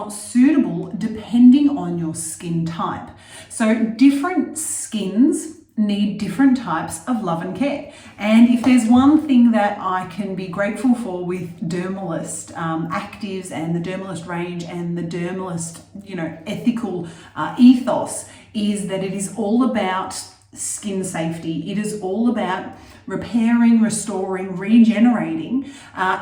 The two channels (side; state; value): both; identical; correlation 1.00